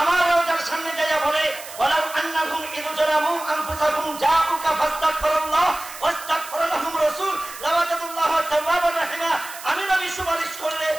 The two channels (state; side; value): noise; right; hiss, 14 dB below the sound